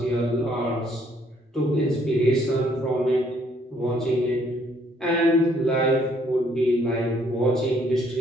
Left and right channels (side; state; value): both; normal; correlation 0.66